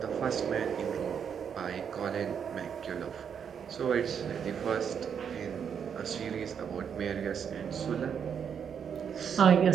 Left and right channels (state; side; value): quieter; left; 7.5 dB